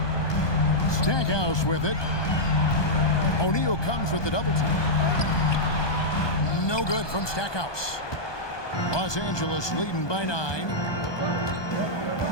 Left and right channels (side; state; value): right; late; 1.2 ms